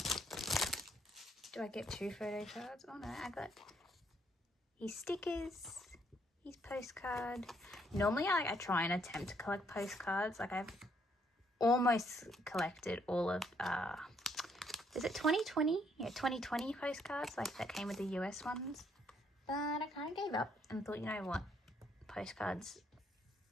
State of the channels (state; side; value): normal; both; correlation 0.69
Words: Do I get 2 photo cards? Oh no, I got his stickers, his postcard. Normally I try and attempt to collect postcards. Like I've almost collected all of, is it 2020? Yeah, 2020 postcards, like that came with the US ones. But I kind of gave up and thought, you know what, postcards